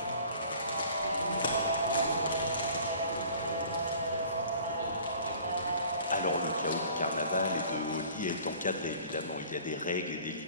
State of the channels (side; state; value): both; inverted; correlation -0.49